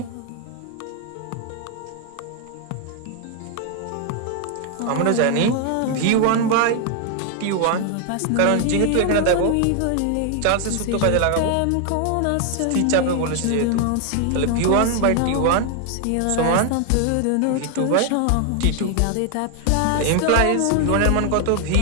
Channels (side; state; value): both; different; correlation 0.00